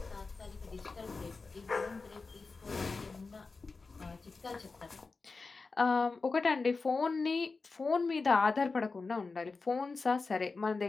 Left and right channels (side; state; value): right; quieter; 4.1 dB